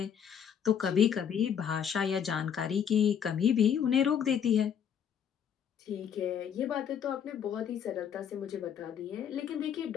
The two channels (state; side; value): quieter; right; 8.2 dB